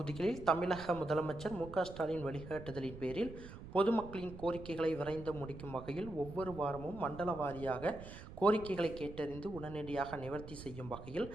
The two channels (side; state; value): right; noise; rumble, 13 dB below the sound